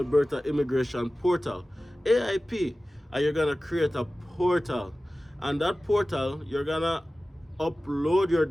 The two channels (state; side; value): normal; both; correlation 0.96